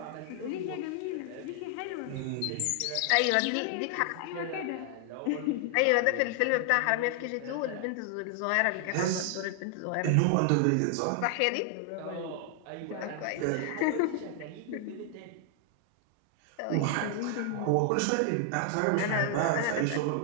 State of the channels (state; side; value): different; both; correlation 0.00